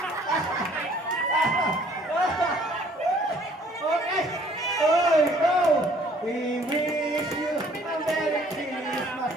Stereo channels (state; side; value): normal; both; correlation 0.58